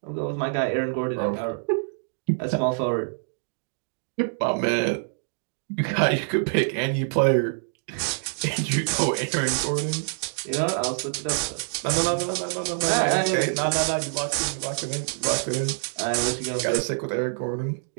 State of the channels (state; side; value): silent; left; digital silence